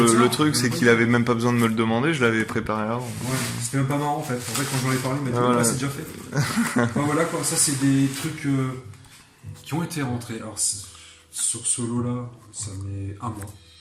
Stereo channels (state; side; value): identical; both; correlation 1.00